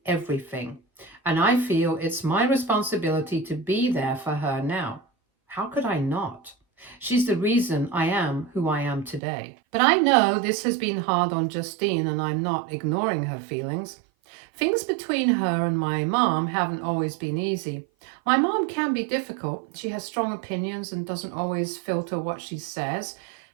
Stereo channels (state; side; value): drops out; left; at 9.2 s